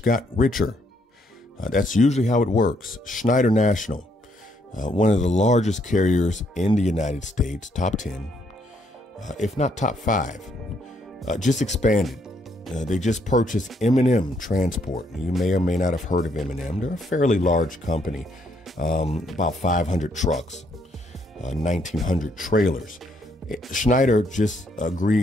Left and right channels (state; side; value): normal; both; correlation 0.72